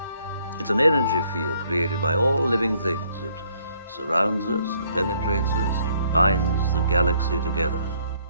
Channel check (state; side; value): inverted; both; correlation -0.65